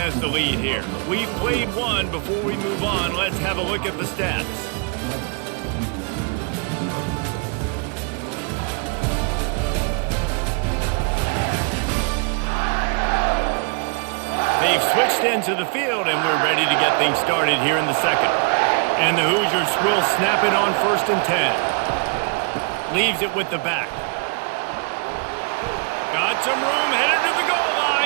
the lead here. We've played one. Before we move on, let's have a look at the stats. They've switched into the field, and we're ready to get things started here in the second. And the Hoosiers will snap it on 1st and 10. Leaves it with the back. Got some room, headed to the goal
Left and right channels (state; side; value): quieter; left; 37.0 dB